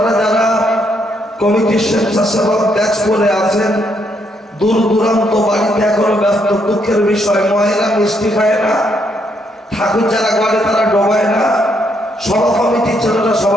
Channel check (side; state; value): both; normal; correlation 0.74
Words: যারা কমিটির স্বেচ্ছাসেবক ব্যাচ করে আছেন, দূর দূরান্ত বাড়িতে এখনো ব্যস্ত, দুঃখের বিষয়, মহিলা মিষ্টি খায় না, ঠাকুর যারা করে তারা ডোবায় না, সভা কমিটির ছেলেরা